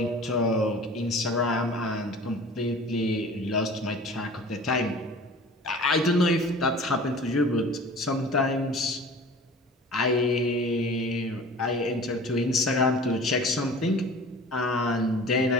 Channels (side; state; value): both; normal; correlation 0.42